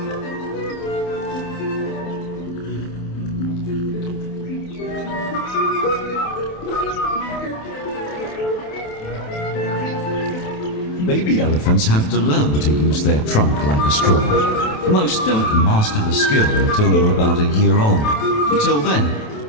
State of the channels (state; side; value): late; right; 28 ms